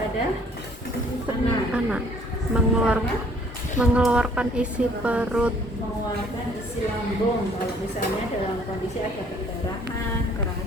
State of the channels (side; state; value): both; normal; correlation 0.59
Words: anak mengeluarkan isi perut, mengeluarkan isi lambung. Kalau misalnya dalam kondisi ada perdarahan,